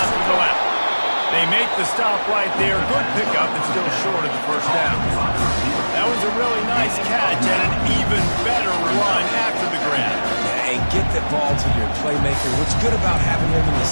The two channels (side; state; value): both; inverted; correlation -1.00